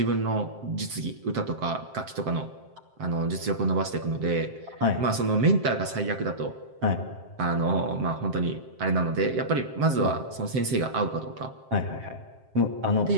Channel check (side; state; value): left; late; 7.6 ms